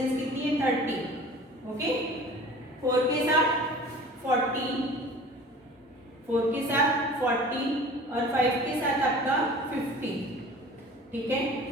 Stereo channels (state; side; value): normal; both; correlation 0.43